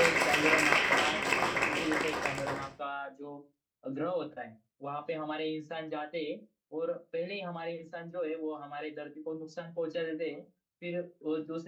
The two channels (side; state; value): both; identical; correlation 1.00